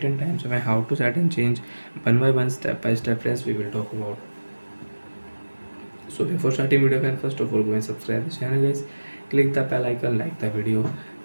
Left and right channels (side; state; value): both; inverted; correlation -1.00